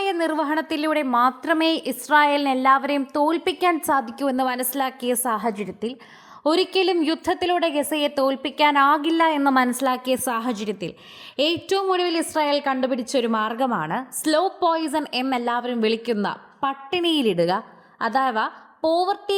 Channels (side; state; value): both; identical; correlation 1.00